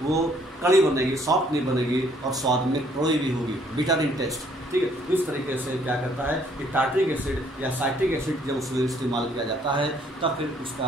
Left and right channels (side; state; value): both; normal; correlation 0.64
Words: वो कड़ी बनेगी, सॉफ्ट नहीं बनेगी और स्वाद में कड़वी भी होगी, बिटर इन टेस्ट। ठीक है, तो इस तरीके से क्या करता है कि टार्ट्रिक एसिड या साइट्रिक एसिड जब उसमें इस्तेमाल किया जाता है तब फिर